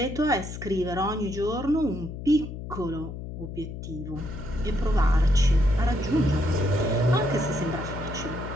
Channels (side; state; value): left; noise; hum, 9 dB below the sound